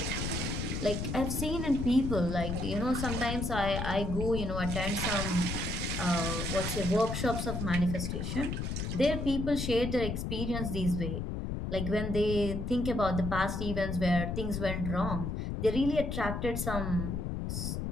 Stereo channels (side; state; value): left; noise; rumble, 3 dB below the sound